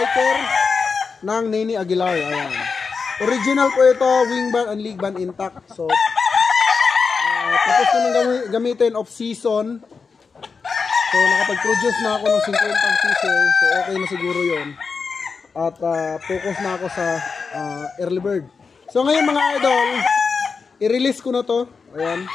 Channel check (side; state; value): right; quieter; 5.1 dB